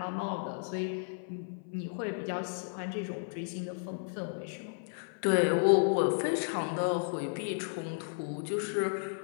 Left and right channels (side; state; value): right; silent; 56 dB below the other